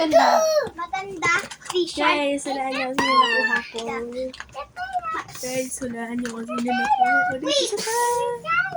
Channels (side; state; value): both; identical; correlation 1.00